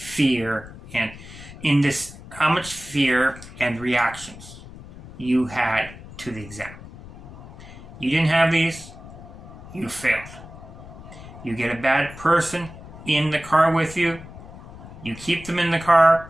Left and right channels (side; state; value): left; noise; rumble, 16 dB below the sound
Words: and reactions you had to the exam. You didn't have these, you failed. You get a bad person in the car with you, you keep them in the car,